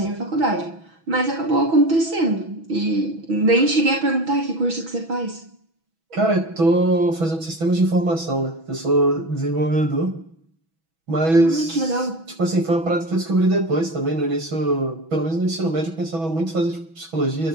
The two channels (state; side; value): late; left; 6.1 ms